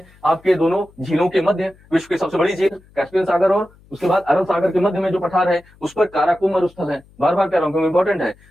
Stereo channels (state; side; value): noise; left; hum, 28 dB below the sound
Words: आपके दोनों झीलों के मध्य, विश्व की सबसे बड़ी झील कैस्पियन सागर और उसके बाद अरब सागर के मध्य में जो पठार है उस पर काराकुम मरुस्थल है। बार बार कह रहा हूं, इंपॉर्टेंट है।